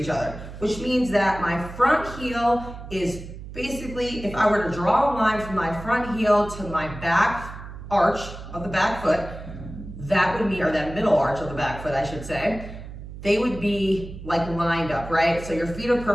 other, which means that my front heel is basically, if I were to draw a line from my front heel to my back arch of the back foot, that would mean, or that middle arch of the back foot, I should say, they would be like lined up, right? So your feet are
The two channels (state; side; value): noise; right; hum, 12 dB below the sound